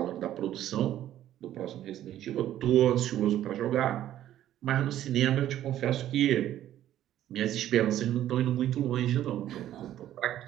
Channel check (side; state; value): left; quieter; 12.3 dB